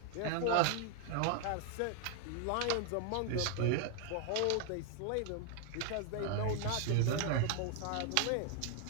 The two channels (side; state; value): both; different; correlation 0.00